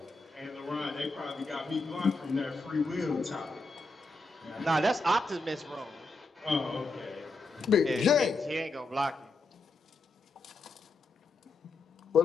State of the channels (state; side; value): quieter; right; 3.4 dB